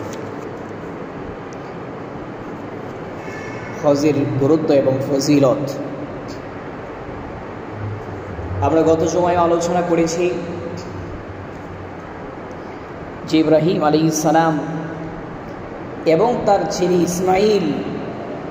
হজের গুরুত্ব এবং ফজিলত। আমরা গত সময়ে আলোচনা করেছি যে ইব্রাহিম আলাইহিস সালাম এবং তার ছেলে ইসমাইল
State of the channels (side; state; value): both; identical; correlation 1.00